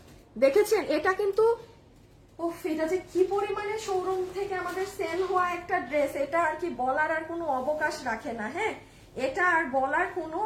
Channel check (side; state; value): both; identical; correlation 1.00